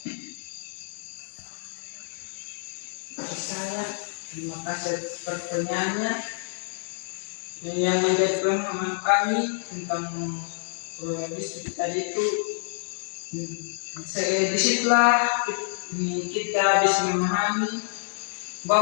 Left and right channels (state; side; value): silent; right; 59 dB below the other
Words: Bagi saya, terima kasih atas pertanyaannya. Yang menjadi pemahaman kami tentang pluralisme tadi itu, disitulah kita bisa memahami